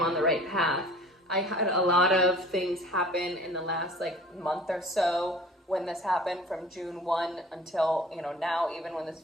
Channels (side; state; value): both; normal; correlation 0.46